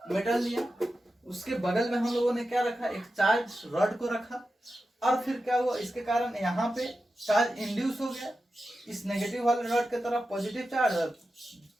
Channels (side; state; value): both; normal; correlation 0.91